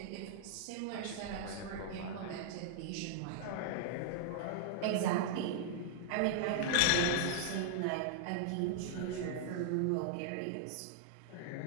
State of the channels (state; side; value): different; both; correlation -0.01